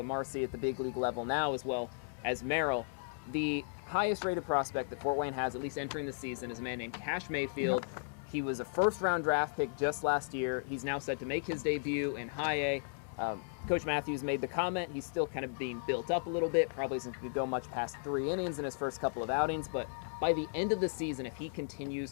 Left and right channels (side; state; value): right; silent; 54 dB below the other